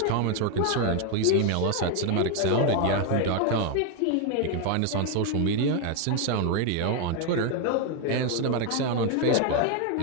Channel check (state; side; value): different; both; correlation 0.01